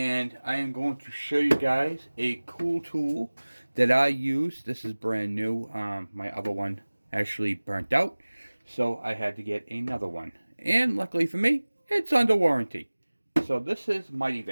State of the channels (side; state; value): both; inverted; correlation -1.00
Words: I am going to show you guys a cool tool that I use. This is brand new. My other one actually burnt out, so I had to get another one. And luckily for me, it's under warranty. So this is Mighty